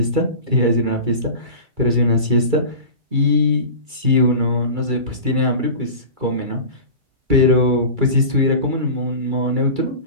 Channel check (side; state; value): left; late; 2.3 ms